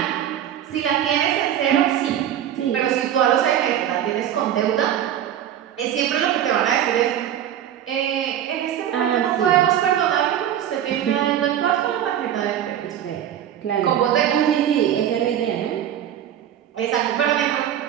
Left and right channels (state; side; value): quieter; left; 10.5 dB